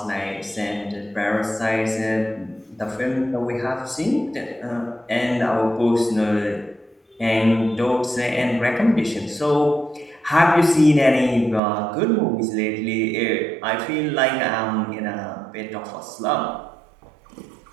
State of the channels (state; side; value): drops out; left; at 11.6 s